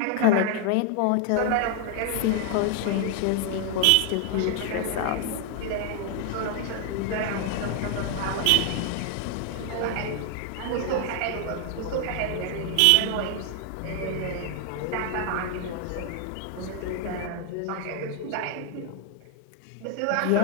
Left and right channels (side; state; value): both; different; correlation 0.00